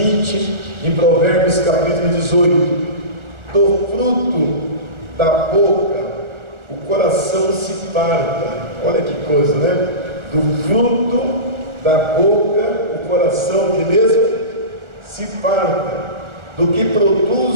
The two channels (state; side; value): late; left; 1.4 ms